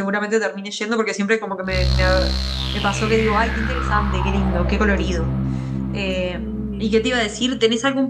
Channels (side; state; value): both; identical; correlation 1.00